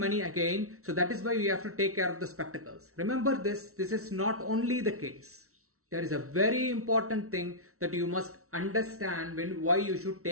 again. So that is why we have to take care of the spectacles. Remember this is not only the case. There is a very important thing that you must understand why you should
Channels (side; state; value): left; late; 0.63 ms